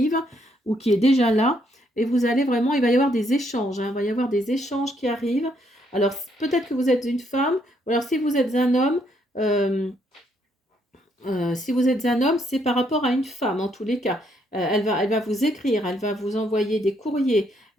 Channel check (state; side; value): normal; both; correlation 0.72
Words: ou qui est déjà là, et vous allez vraiment, il va y avoir des échanges, hein, il va y avoir des échanges qui arrivent. Alors, peut-être que vous êtes une femme, ou alors si vous êtes un homme, euh, si vous êtes un homme, c'est par rapport à une femme en tous les cas. Elle va vous écrire, elle va vous envoyer des courriers,